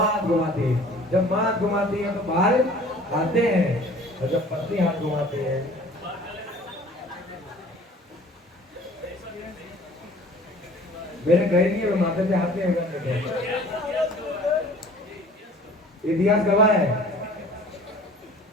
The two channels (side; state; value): both; normal; correlation 0.49